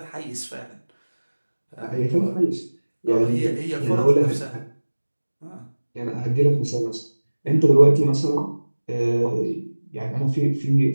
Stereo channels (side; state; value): both; inverted; correlation -1.00